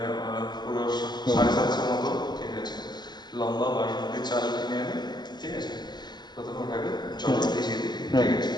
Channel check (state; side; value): late; right; 0.21 ms